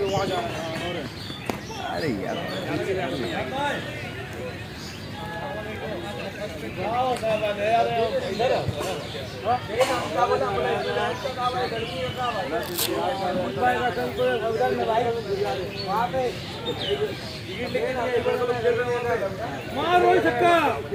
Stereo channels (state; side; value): identical; both; correlation 1.00